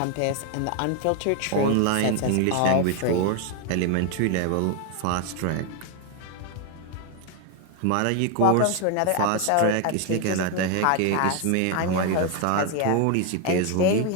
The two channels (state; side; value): different; both; correlation 0.01